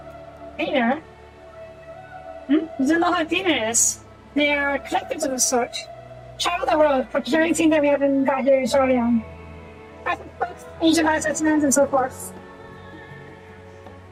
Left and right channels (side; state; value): both; identical; correlation 1.00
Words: Cleaner? You don't know what a cleaner is? They are collectors of a sort. Travel the world, procuring things that we haven't got here in Shorian. Books, ancient art specimens, and so forth.